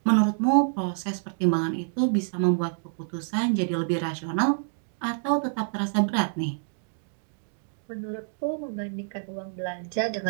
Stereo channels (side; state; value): left; silent; digital silence